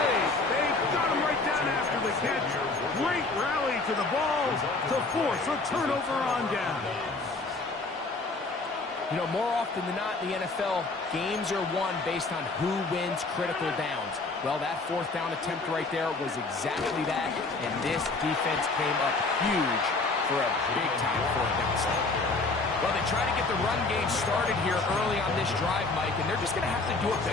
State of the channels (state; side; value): quieter; right; 3.6 dB